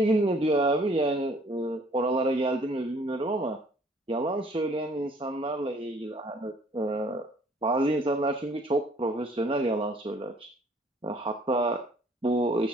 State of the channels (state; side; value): normal; both; correlation 0.58